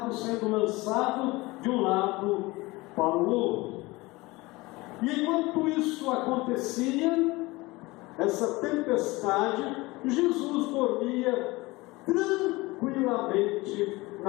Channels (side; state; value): right; quieter; 21.9 dB